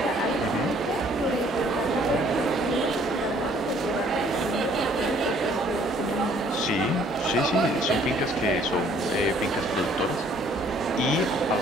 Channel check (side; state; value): both; normal; correlation 0.60